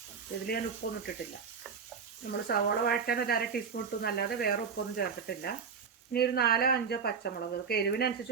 ഇതിൽ ഞാൻ ഉപ്പൊന്നും ഇട്ടിട്ടില്ല. നമ്മൾ സവോള വഴറ്റാൻ ഒരു 1/2 ടീസ്പൂൺ ഇട്ടു എന്നല്ലാതെ വേറെ ഉപ്പൊന്നും ചേർത്തിട്ടില്ല. ഇനി ഒരു 4-5 പച്ചമുളക്, അതൊക്കെ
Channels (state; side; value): quieter; left; 6.0 dB